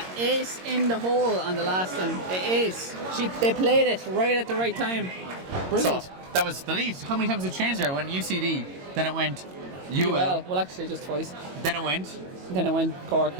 ace in the hole on the last one. The ace. They played it right at the right time. Brilliant. So, that was the lead. How many times did it change there? It went UCD, then it went UL, Well, actually, just twice. then it went Then it went Cork.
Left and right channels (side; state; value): left; late; 22 ms